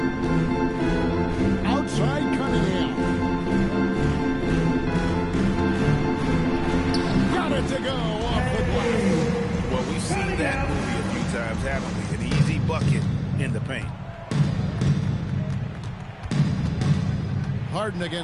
Outside Cunningham. Got it to go off the glass. Well, we've seen that movie a few times, haven't we? An easy bucket in the paint. Harden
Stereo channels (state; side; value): identical; both; correlation 1.00